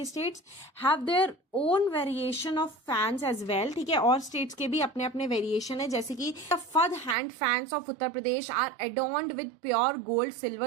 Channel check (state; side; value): drops out; left; at 7.2 s